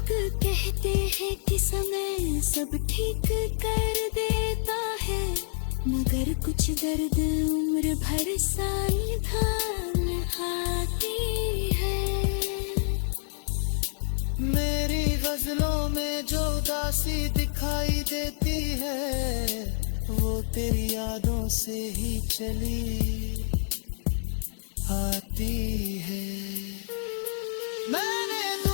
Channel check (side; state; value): right; silent; digital silence